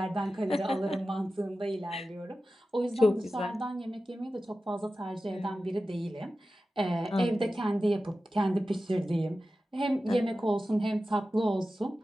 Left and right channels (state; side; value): normal; both; correlation 0.94